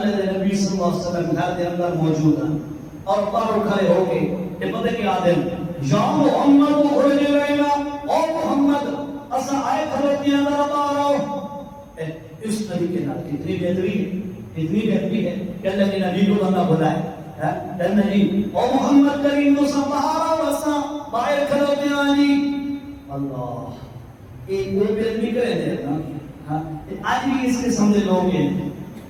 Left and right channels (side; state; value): both; identical; correlation 1.00